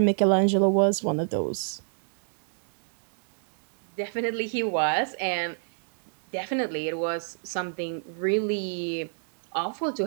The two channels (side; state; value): left; silent; digital silence